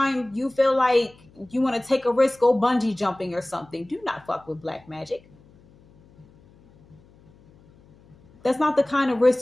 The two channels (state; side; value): noise; left; hum, 28 dB below the sound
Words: you feel like you want to take a risk, go bungee jumping or something. Do not fuck with black magic. That's not the kind of